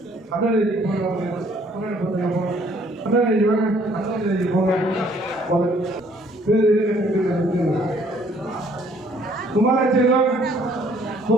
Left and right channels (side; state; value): both; normal; correlation 0.61